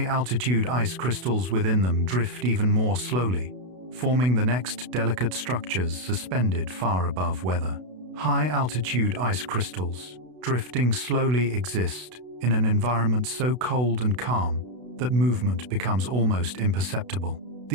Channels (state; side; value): late; left; 32 ms